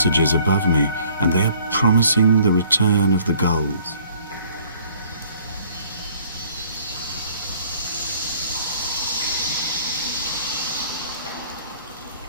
above me, and they are promising the return of the gulls.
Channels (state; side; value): inverted; both; correlation -0.57